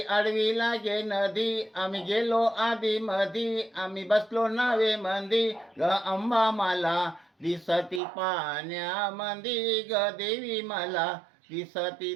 आडवी लागे नदी, आम्ही गेलो आधी मधी, आम्ही बसलो नावे मंदी, ग अंबा मला दिसती पाण्यामंदी, ग देवी मला दिसती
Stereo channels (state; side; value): drops out; left; at 8.0 s